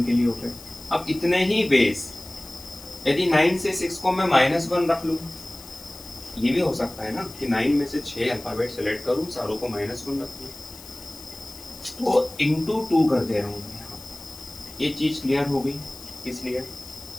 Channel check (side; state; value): left; noise; hiss, 17 dB below the sound